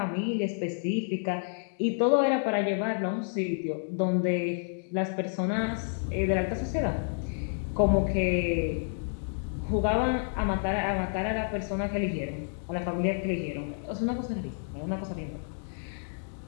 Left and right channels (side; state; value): right; silent; digital silence